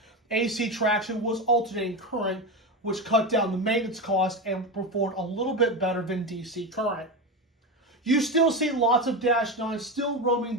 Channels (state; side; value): normal; both; correlation 0.18